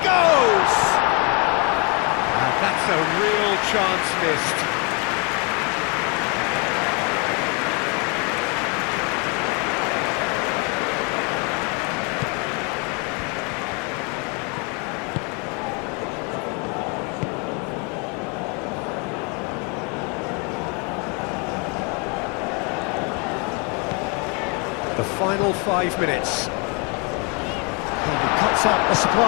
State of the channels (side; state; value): right; quieter; 33.0 dB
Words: And that's a real chance missed. The final 5 minutes. And he cuts out the